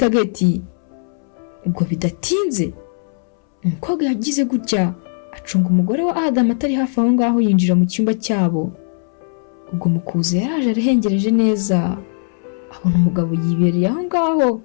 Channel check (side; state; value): right; silent; 67 dB below the other